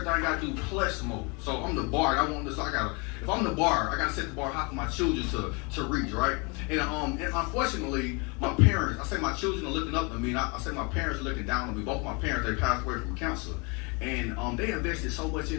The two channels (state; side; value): quieter; right; 30.9 dB